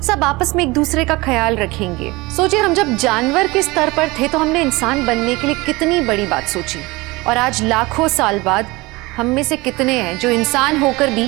सब आपस में एक दूसरे का ख्याल रखेंगे। सोचिए, हम जब जानवर के स्तर पर थे तो हमने इंसान बनने के लिए कितनी बड़ी बात सोची, और आज लाखों साल बाद हम में से कितने हैं जो इंसान होकर भी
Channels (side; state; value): left; quieter; 22.6 dB